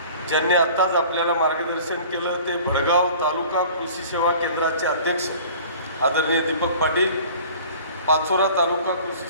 ज्यांनी आत्ताच आपल्याला मार्गदर्शन केलं ते भडगाव तालुका कृषी सेवा केंद्राचे अध्यक्ष आदरणीय दीपक पाटील, पाचोरा तालुका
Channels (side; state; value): both; inverted; correlation -0.45